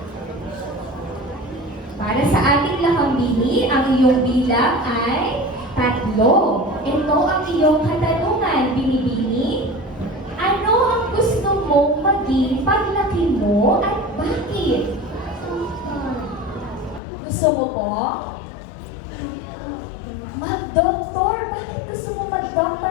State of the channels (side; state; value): right; drops out; at 17.0 s